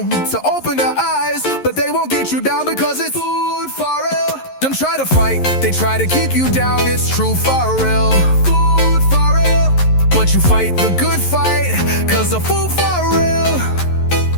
to open their eyes, but they won't get you down because it's Food-Farrell. Them try to fight, they try to keep you down, it's true Farrell. Food-Farrell, but you fight the good fight, cause the Food-Farrell.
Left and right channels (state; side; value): late; right; 11 ms